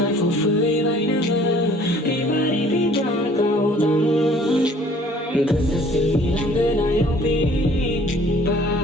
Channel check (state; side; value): normal; both; correlation 0.54